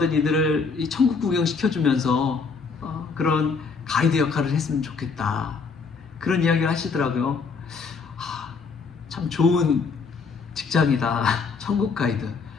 이들을 이 천국 구경 시켜주면서 그런 가이드 역할을 했으면 좋겠다. 그런 이야기를 하시더라고요. 참 좋은 직장이다. 천국 가이드.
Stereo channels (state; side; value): quieter; right; 5.0 dB